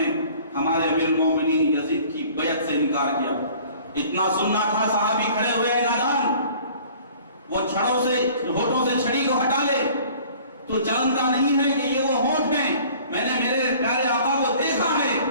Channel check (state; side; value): inverted; both; correlation -0.50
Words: ہمارے امیر المومنین یزید کی بیعت سے انکار کیا۔ اتنا سننا تھا، صحابی کھڑے ہوئے نادان، وہ چھڑوں سے ہونٹوں سے چھڑی کو ہٹا لے، تو جانتا نہیں ہے کہ یہ وہ ہونٹ ہیں، میں نے میرے پیارے آقا کو دیکھا ہے